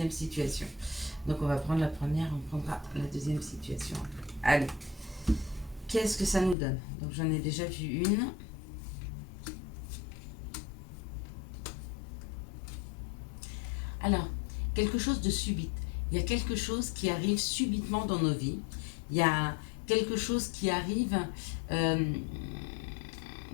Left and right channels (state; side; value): drops out; right; at 6.6 s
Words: situation. Donc, on va prendre la première, on prendra la deuxième situation. Allez, qu'est-ce que ça nous donne? Donc, j'en ai déjà vu une. Alors, quelque chose de subite. Il y a quelque chose qui arrive subitement dans nos vies. Il y a quelque chose qui arrive